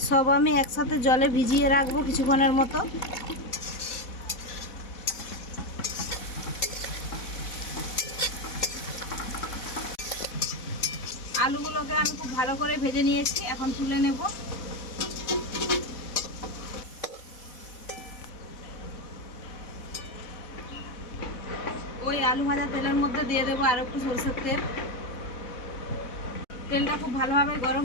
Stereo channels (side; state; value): right; late; 4.1 ms